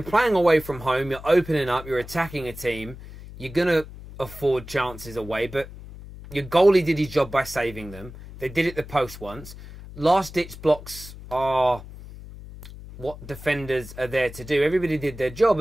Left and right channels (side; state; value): left; noise; hum, 15 dB below the sound